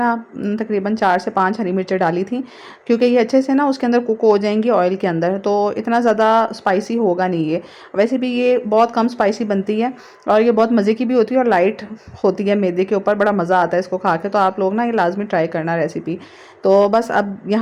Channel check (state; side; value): identical; both; correlation 1.00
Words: तकरीबन 4 से 5 हरी मिर्चें डाली थी, क्योंकि ये अच्छे से ना उसके अंदर कुक हो जाएंगी ऑयल के अंदर, तो इतना ज़्यादा स्पाइसी होगा नहीं ये। वैसे भी ये बहुत कम स्पाइसी बनती है और ये बहुत मज़े की भी होती है और लाइट होती है मैदे के ऊपर, बड़ा मज़ा आता है इसको खा के। तो आप लोग ना ये लाजमी ट्राई करना रेसिपी। तो बस अब